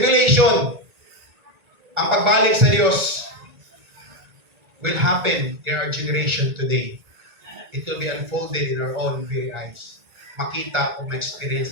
ang pagbalik sa Diyos will happen in our generation today. It will be unfolded in our own very eyes. Makita o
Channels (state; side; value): late; left; 1.9 ms